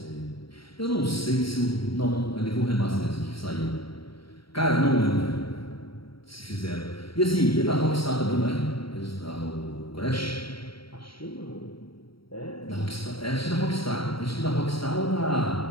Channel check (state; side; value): late; right; 0.74 ms